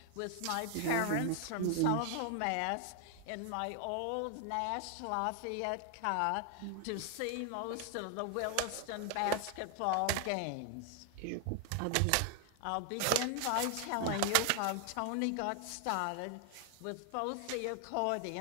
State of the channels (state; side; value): different; both; correlation 0.00